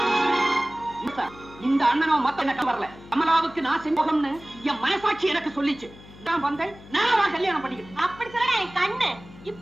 இந்த அண்ணனும் மத்த எனக்கு வரல. கமலாவுக்கு நான் செஞ்சோம்னு என் மனசாட்சி எனக்கு சொல்லிச்சு. நான் வந்தேன், நான் கல்யாணம் பண்ணிக்கிறேன். அப்படி சொல்ல என் கண்ணு. இப்ப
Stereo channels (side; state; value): left; noise; hum, 20 dB below the sound